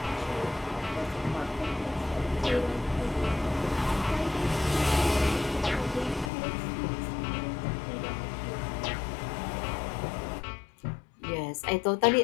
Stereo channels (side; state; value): right; drops out; at 6.3 s